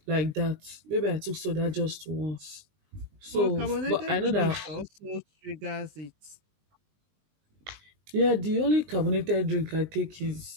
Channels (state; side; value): late; left; 20 ms